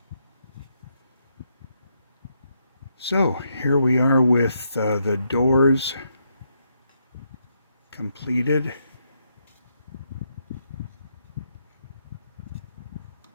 So here we are with the doors completed.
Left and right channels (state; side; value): inverted; both; correlation -0.78